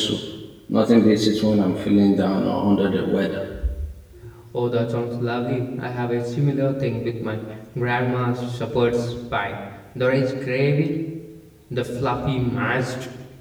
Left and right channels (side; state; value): both; identical; correlation 1.00